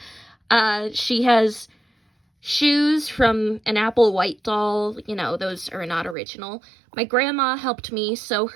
She has shoes from an Apple White doll. You know, those are not original. My grandma helped me sew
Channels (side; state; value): left; drops out; at 6.2 s